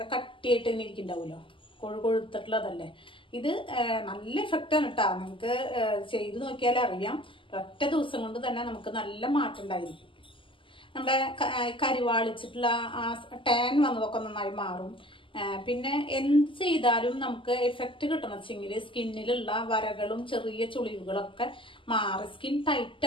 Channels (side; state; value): right; late; 0.25 ms